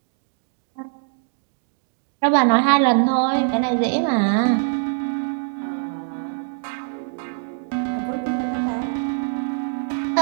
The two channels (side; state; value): left; silent; digital silence